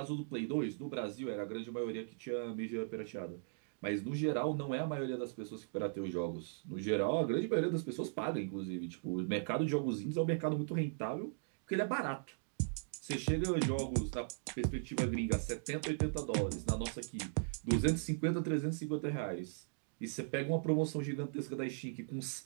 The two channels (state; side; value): silent; left; digital silence